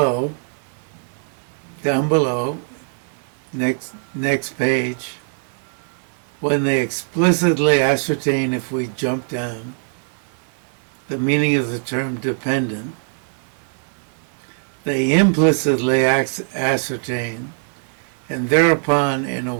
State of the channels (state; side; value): silent; left; digital silence